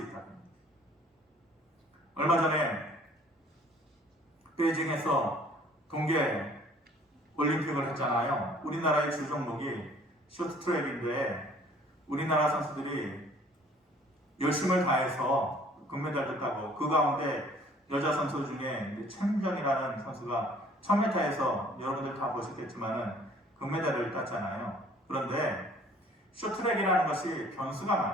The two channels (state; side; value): normal; both; correlation 0.55